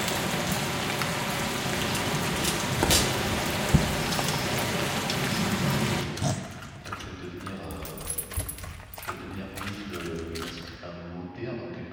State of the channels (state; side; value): identical; both; correlation 1.00